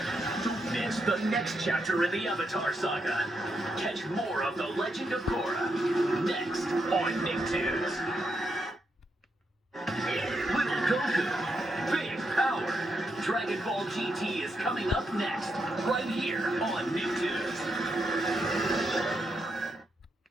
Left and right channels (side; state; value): both; normal; correlation 0.82